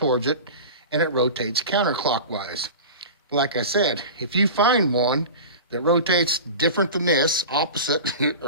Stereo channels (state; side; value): inverted; both; correlation -0.32